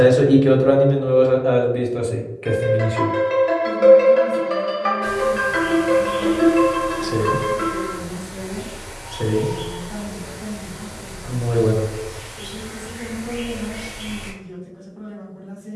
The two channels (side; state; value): both; identical; correlation 1.00